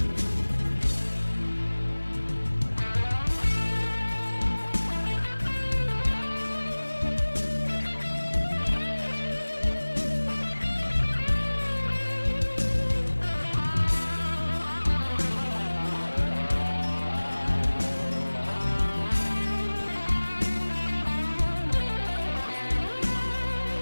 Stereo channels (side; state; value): both; inverted; correlation -1.00